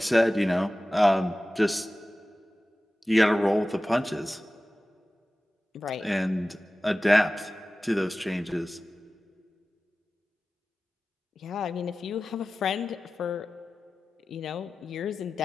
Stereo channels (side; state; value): both; normal; correlation 0.96